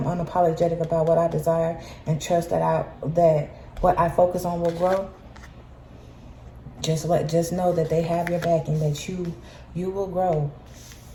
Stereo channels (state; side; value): identical; both; correlation 1.00